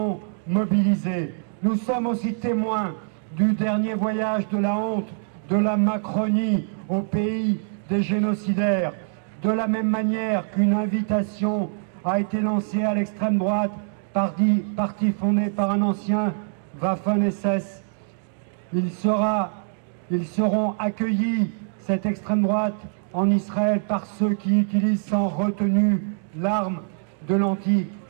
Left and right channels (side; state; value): left; silent; digital silence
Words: mobilisés. Nous sommes aussi témoins du dernier voyage de la honte, de la Macronie au pays des génocidaires. De la même manière qu'une invitation a été lancée à l'extrême droite, parti fondé par un ancien Waffen-SS, ils seront accueillis, cette extrême droite, en Israël par ceux qui utilisent sans retenue l'arme de